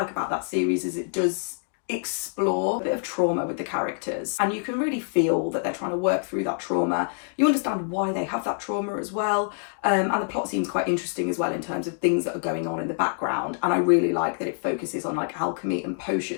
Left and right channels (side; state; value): right; silent; 61 dB below the other